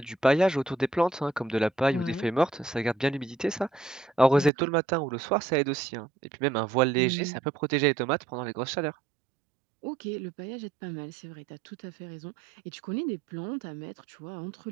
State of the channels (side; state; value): left; drops out; at 4.5 s